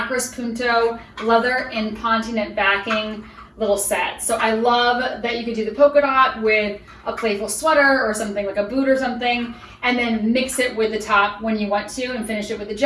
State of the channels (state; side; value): identical; both; correlation 1.00